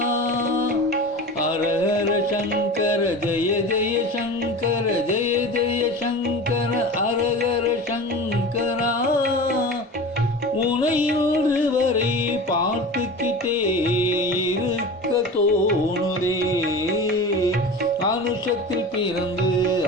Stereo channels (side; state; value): both; normal; correlation 0.33